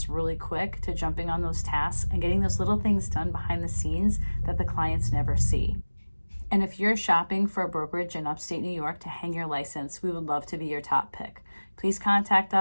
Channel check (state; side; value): inverted; both; correlation -1.00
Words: really quick to jumping on those tasks and getting those little things done behind the scenes that the clients never see. And if you're shopping for a brokerage in upstate New York to hang your license, we would love to be your top pick. Please contact